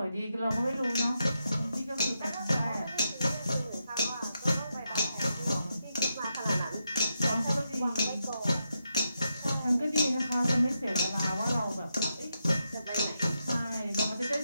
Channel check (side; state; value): both; inverted; correlation -0.84